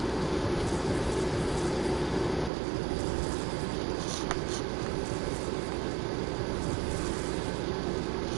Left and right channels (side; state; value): left; drops out; at 2.5 s